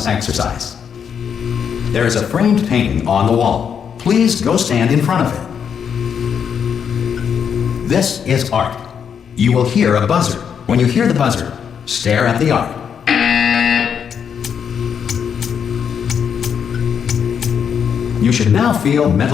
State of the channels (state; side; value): quieter; right; 7.5 dB